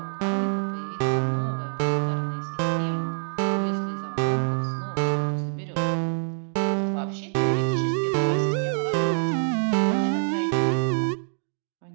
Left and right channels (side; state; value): left; silent; 61 dB below the other